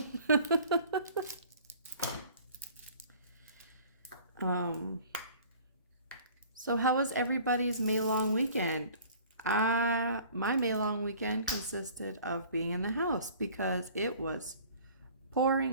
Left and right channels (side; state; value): both; inverted; correlation -0.49